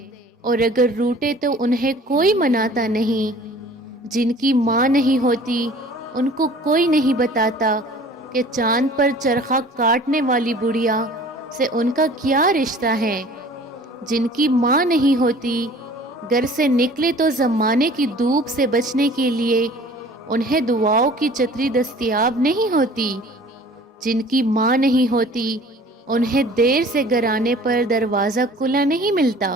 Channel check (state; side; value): normal; both; correlation 0.48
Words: اور اگر روٹے تو انہیں کوئی مناتا نہیں۔ جن کی ماں نہیں ہوتی ان کو کوئی نہیں بتاتا کہ چاند پر چرخہ کاٹنے والی بڑھیا سے ان کا کیا رشتہ ہے۔ جن کی ماں نہیں ہوتی گھر سے نکلے تو زمانے کی دھوپ سے بچنے کے لیے انہیں دعاؤں کی چھتری دستیاب نہیں ہوتی۔ جن کی ماں نہیں ہوتی انہیں دیر سے گھر آنے پر دروازہ کھلا نہیں ملتا۔